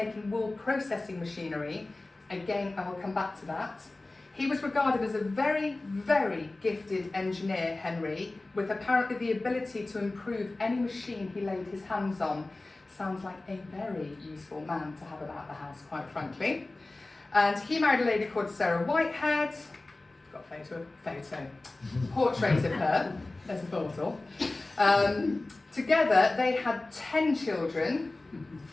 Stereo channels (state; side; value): quieter; right; 3.0 dB